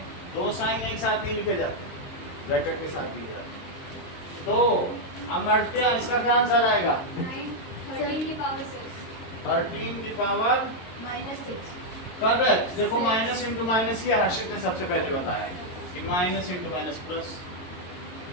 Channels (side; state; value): right; late; 22 ms